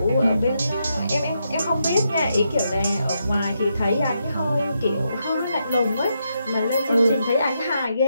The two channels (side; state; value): both; inverted; correlation -0.81